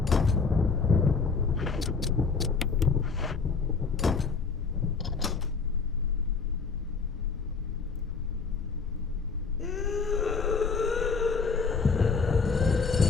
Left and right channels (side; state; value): right; quieter; 4.9 dB